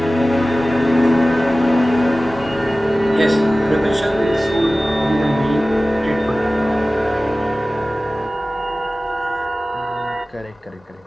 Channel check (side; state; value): both; normal; correlation 0.97